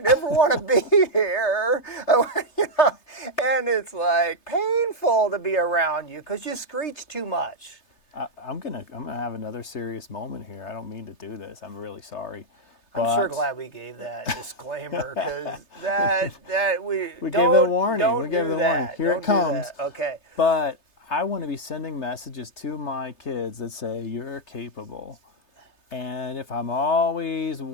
never want to be here. You know, and it's like painful to be around you because you screech too much. I'm gonna have another serious moment here. I don't mean to do this. I'm really sorry. I'm sure glad we gave that disclaimer because that we gave the warning. We gave the warning. Here don't it comes. Okay. But I want to be sending messages to my kids that say you're capable. And if I'm always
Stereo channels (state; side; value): late; right; 3.3 ms